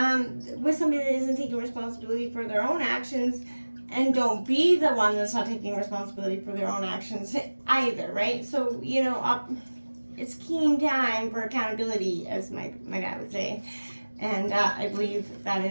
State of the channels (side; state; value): both; inverted; correlation -1.00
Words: with somebody that isn't taking responsibility for their own actions, and don't be the one that's not taking responsibility for their own actions either, right? So, it's keen time for accountability, as my dad would say. And I believe that